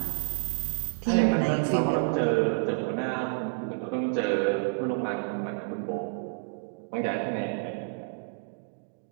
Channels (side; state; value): left; silent; 58 dB below the other